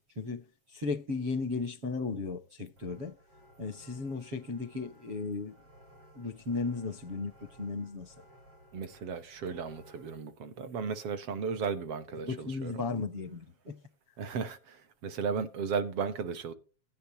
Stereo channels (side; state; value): left; late; 7.4 ms